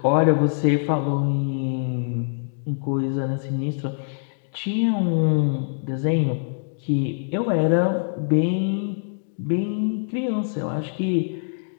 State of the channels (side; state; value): right; silent; digital silence